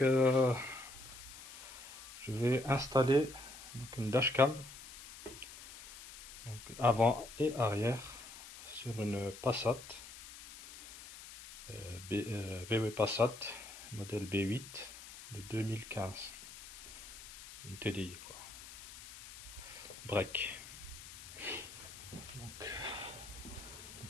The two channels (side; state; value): left; noise; hiss, 15 dB below the sound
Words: vais installer une dashcam, donc avant et arrière, sur une Passat VW Passat modèle B8 de 2015, une TDI quoi, break.